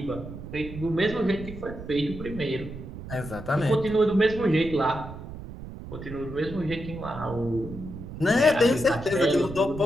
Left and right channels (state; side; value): noise; right; rumble, 11 dB below the sound